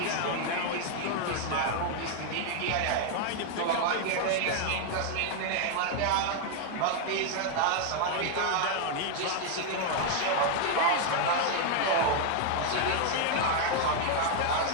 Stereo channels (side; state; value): both; different; correlation 0.00